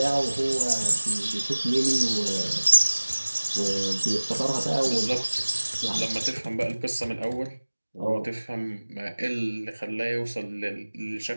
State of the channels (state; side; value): inverted; both; correlation -1.00